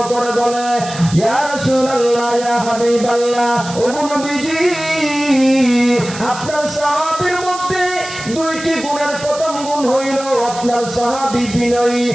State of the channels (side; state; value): right; noise; hiss, 12 dB below the sound